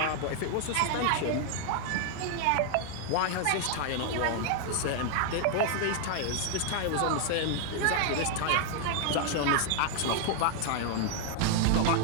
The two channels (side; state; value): both; different; correlation 0.00